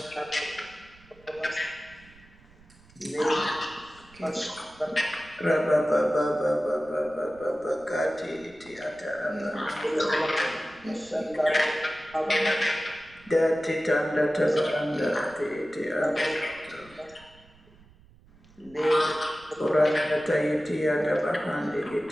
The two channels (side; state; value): right; noise; rumble, 26 dB below the sound